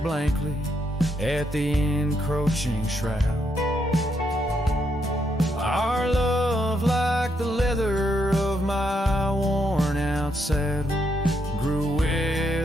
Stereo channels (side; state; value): both; normal; correlation 0.78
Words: at the encroaching shroud. Our love, like the leather of my worn out saddle, grew